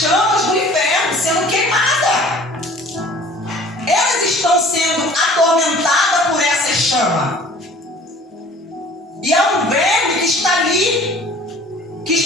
do inferno, sendo queimadas. Elas estão sendo atormentadas por essa chama. E há um verme que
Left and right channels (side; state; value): both; normal; correlation 0.49